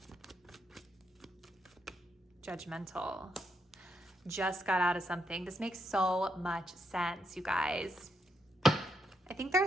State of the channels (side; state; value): both; normal; correlation 0.80